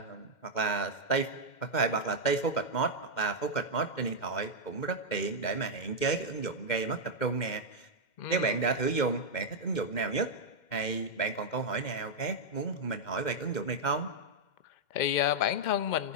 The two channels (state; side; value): late; right; 2.1 ms